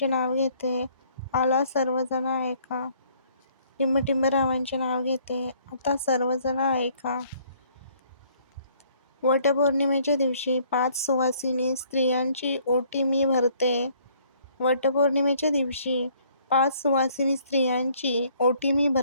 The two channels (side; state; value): both; inverted; correlation -0.62